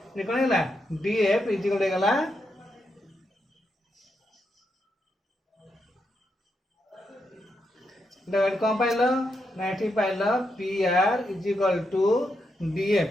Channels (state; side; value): normal; both; correlation 0.83